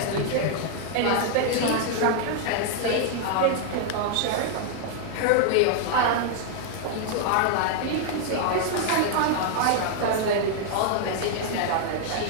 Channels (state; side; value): different; both; correlation 0.00